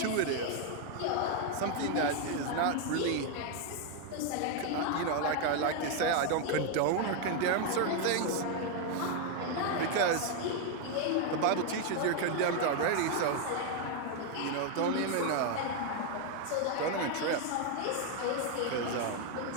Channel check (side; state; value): both; different; correlation 0.01